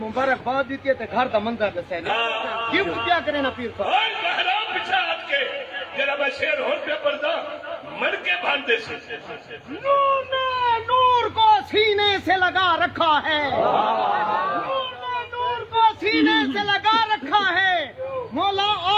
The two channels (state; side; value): identical; both; correlation 1.00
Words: मुबारकबाद दी ते घर दा मंजर दसे गिफ्ट क्या करे ना पीर साहब। ओए महराम पीछे हट के जरा मैं शेर होर पे पर्दा मर के बांधे से नूर ने नूर को सीने से लगा रखा है, नूर ने नूर को सीने से लगा रखा है, मौला